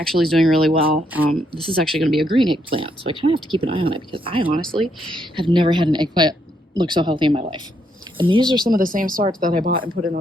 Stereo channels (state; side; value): normal; both; correlation 0.75